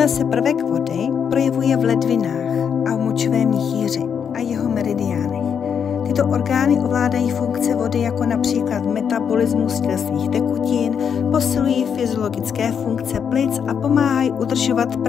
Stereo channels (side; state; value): right; quieter; 7.4 dB